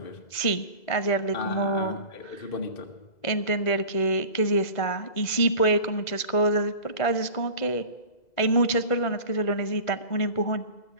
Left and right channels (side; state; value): right; late; 2.0 ms